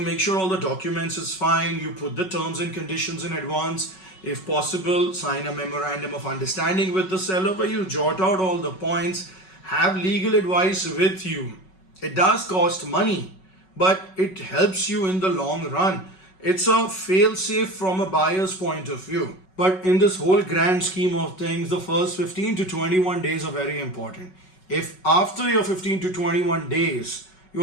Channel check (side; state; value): right; late; 5.3 ms